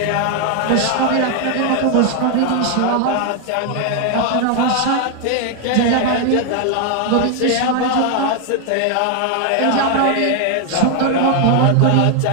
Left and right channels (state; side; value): different; both; correlation 0.00